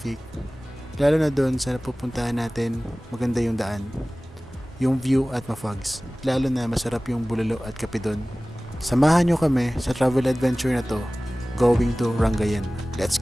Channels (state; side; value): normal; both; correlation 0.98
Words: lalo na doon sa napupuntahan natin, maganda yung daan, yung view at ma-fogs, lalo na masarap yung bulalo at kape doon. Samahan nyo kami sa travel adventure na to, going to Rangayin. Let's